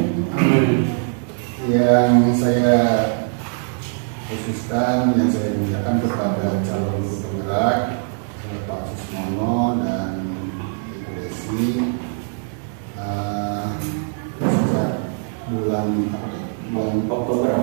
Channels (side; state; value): left; silent; 57 dB below the other